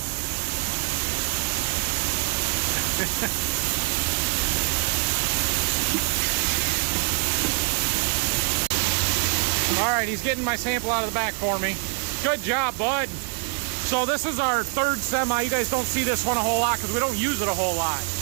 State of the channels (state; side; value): quieter; left; 38.3 dB